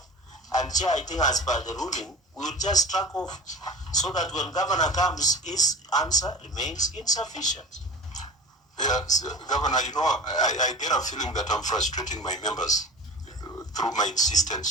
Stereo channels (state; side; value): normal; both; correlation 0.36